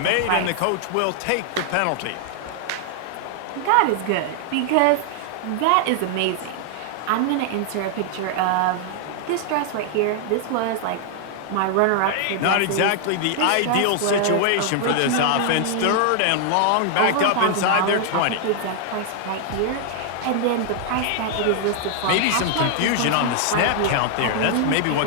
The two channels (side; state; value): both; different; correlation 0.00